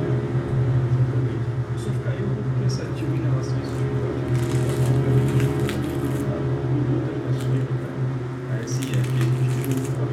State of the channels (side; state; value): both; identical; correlation 1.00